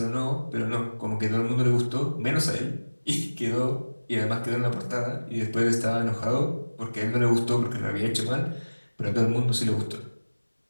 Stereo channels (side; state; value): both; inverted; correlation -1.00